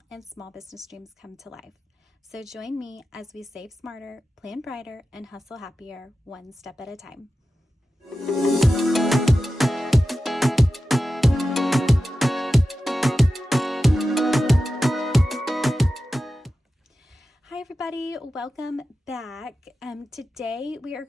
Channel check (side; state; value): both; normal; correlation 0.93